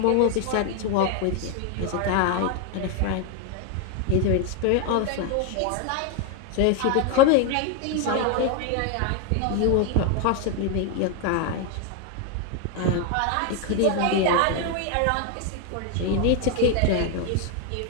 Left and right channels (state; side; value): different; both; correlation 0.01